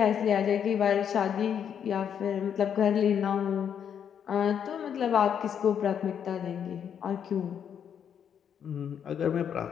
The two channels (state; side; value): quieter; right; 8.3 dB